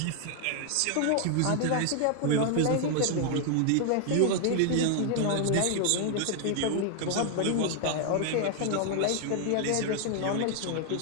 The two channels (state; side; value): different; both; correlation 0.00